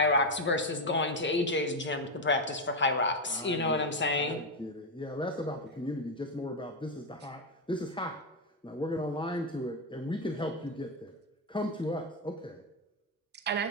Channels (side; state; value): both; normal; correlation 0.06